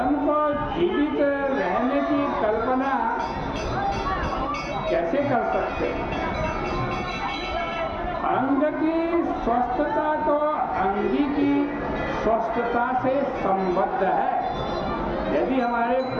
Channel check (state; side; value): identical; both; correlation 1.00